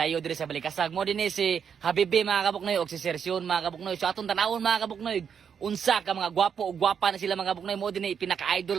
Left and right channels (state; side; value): quieter; left; 7.3 dB